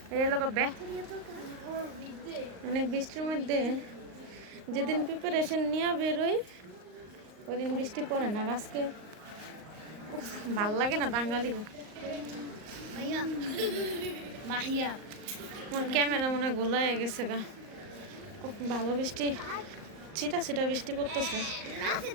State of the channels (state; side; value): late; left; 38 ms